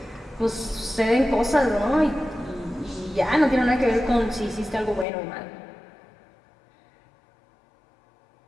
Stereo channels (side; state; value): right; drops out; at 5.1 s